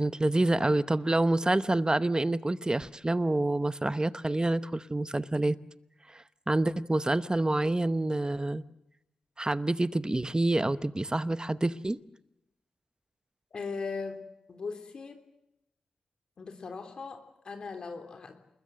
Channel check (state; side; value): normal; both; correlation 0.97